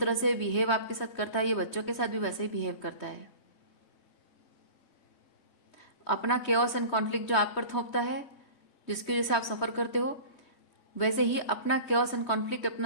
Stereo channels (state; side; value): late; right; 3.2 ms